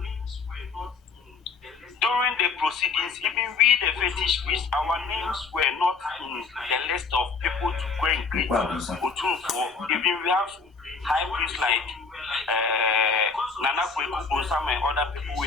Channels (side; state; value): right; quieter; 4.8 dB